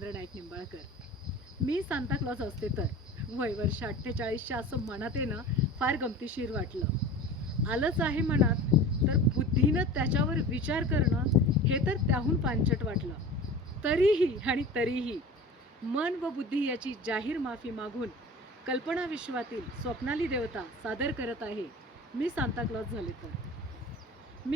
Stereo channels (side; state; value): both; normal; correlation 0.37